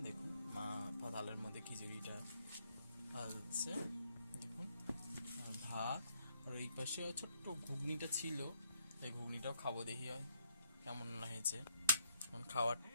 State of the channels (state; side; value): inverted; both; correlation -0.72